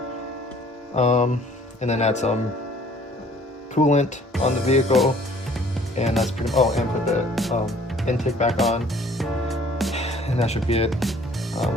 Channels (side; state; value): both; normal; correlation 0.55